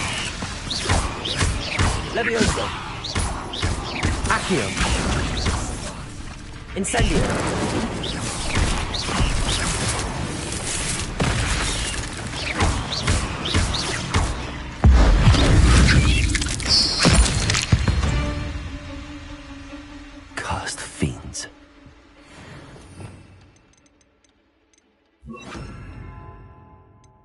Levioso. Accio. Incendio. Cursed fiends.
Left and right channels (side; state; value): both; identical; correlation 1.00